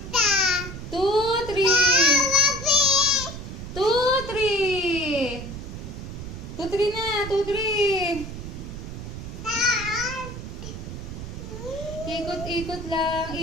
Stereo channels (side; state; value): right; noise; rumble, 9 dB below the sound